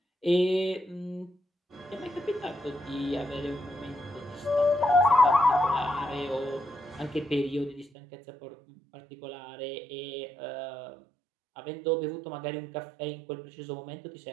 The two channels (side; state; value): left; drops out; at 7.9 s